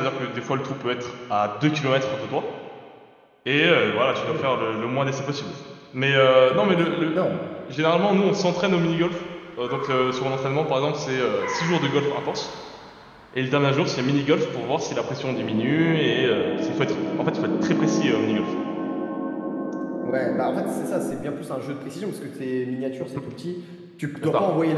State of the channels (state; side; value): identical; both; correlation 1.00